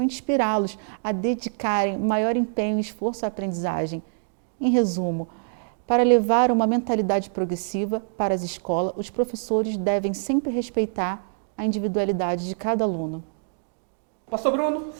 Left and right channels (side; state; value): left; silent; digital silence